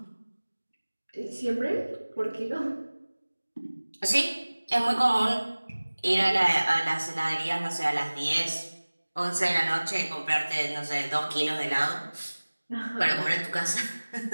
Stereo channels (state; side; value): inverted; both; correlation -1.00